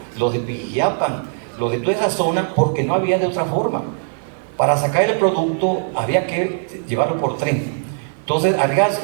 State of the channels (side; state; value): left; silent; digital silence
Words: los de Pijiapan, los de toda esa zona, porque no había de otra forma. Para sacar el producto había que llevarlo por tren. Entonces Arriaga